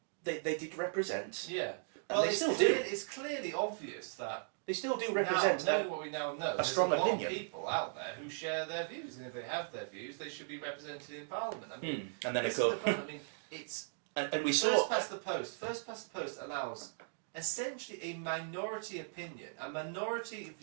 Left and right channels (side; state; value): left; silent; digital silence